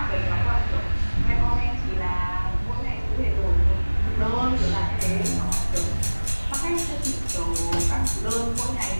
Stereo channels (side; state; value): both; inverted; correlation -1.00